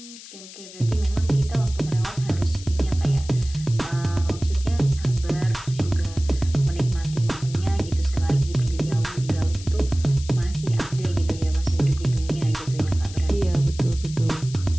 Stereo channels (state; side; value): noise; left; hiss, 16 dB below the sound